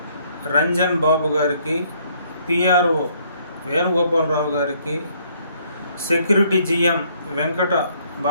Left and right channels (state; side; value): inverted; both; correlation -0.66